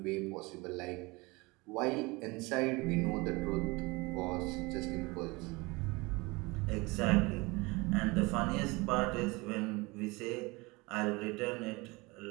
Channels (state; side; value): quieter; left; 24.6 dB